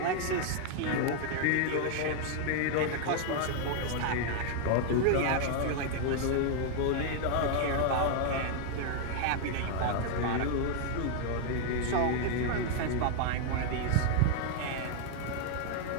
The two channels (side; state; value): both; different; correlation 0.00